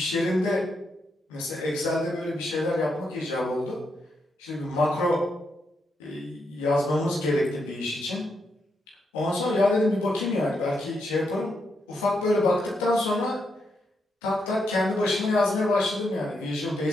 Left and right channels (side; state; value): both; normal; correlation 0.81